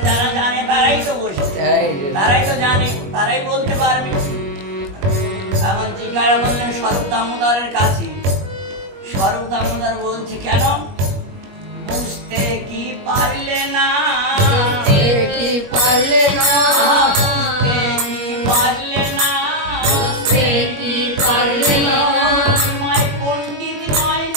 যারা জানে তারাই তো বসে, তারাই তো জানে, তারাই বলতে পারবে। এখন জিজ্ঞাসা করলেন স্বরূপ দামোদরের কাছে। স্বরূপ দামোদর বলছে কেন? বুঝতে কি পারলে না, কি পারলে না, বুঝতে কি পারলে না, কি পারলে না, মাই পণ্ডিত নয়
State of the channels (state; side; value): late; left; 21 ms